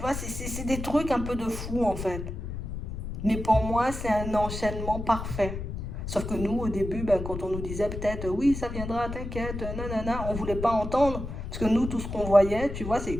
c'est des trucs un peu de fou, en fait. Mais pour moi, c'est un enchaînement parfait. Sauf que nous, au début, ben, quand on nous disait peut-être, oui, ça viendra, t'inquiète, nanana, on ne voulait pas entendre. Parce que nous, tout ce qu'on voyait, tu vois, c'est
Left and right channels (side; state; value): left; noise; rumble, 6 dB below the sound